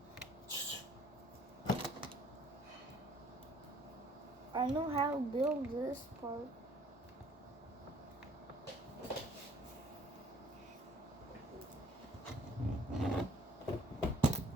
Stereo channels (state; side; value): normal; both; correlation 0.58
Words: I know how to build this part.